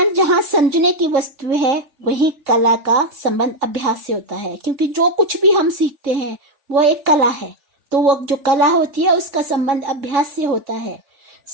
जहाँ समझने की वस्तु है वहीं कला का संबंध अभ्यास से होता है, क्योंकि जो कुछ भी हम सीखते हैं वो एक कला है, तो वो जो कला होती है उसका संबंध अभ्यास से होता है।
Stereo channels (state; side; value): late; left; 3.6 ms